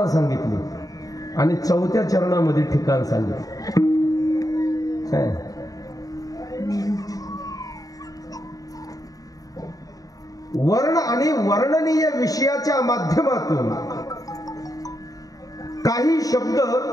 सांगितली आणि चौथ्या चरणामध्ये ठिकाण सांगितलं. वर्ण आणि वर्णनीय विषयाच्या माध्यमातून काही शब्द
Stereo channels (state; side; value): late; right; 0.17 ms